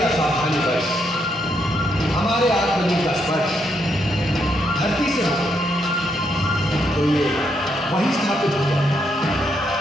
असावधानीवश हमारे आत्मलिंग का स्पर्श धरती से हो तो ये वहीं स्थापित हो जाए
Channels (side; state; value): both; normal; correlation 0.77